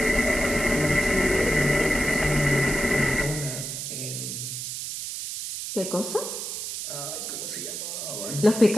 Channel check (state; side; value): noise; right; hiss, 5 dB below the sound